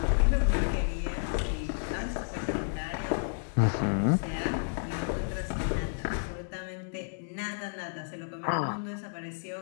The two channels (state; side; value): silent; right; digital silence